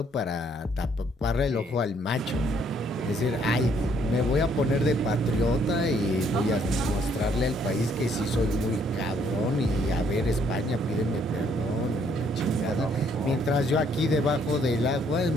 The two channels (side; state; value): both; normal; correlation 0.67